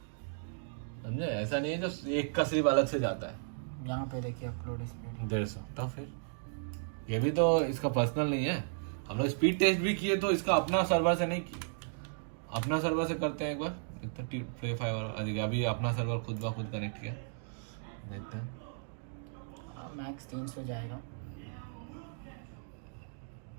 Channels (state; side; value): silent; left; digital silence